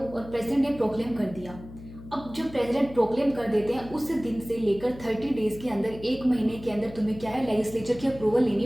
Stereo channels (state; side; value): noise; left; hum, 16 dB below the sound